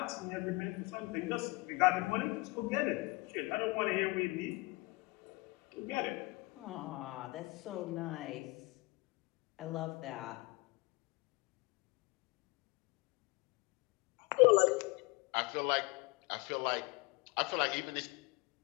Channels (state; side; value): quieter; right; 25.1 dB